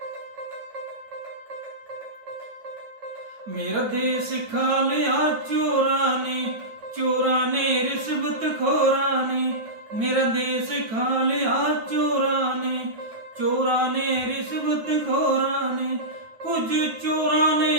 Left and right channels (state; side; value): late; left; 9.0 ms